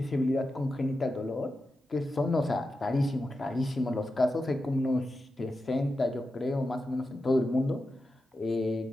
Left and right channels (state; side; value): normal; both; correlation 0.90